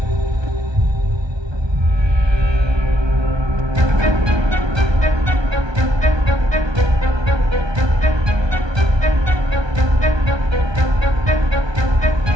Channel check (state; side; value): late; left; 1.2 ms